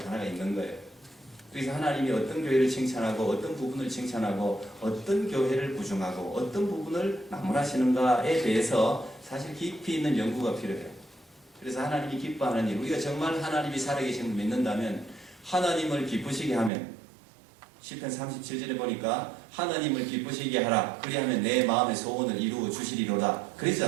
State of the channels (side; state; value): left; drops out; at 16.7 s